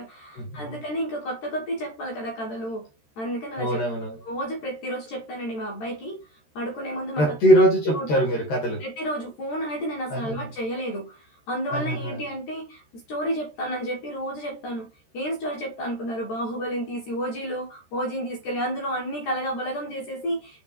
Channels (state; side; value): late; right; 13 ms